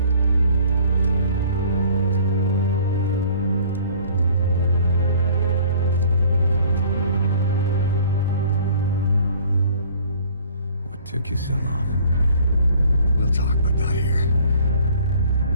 Took you so long.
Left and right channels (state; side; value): inverted; both; correlation -0.53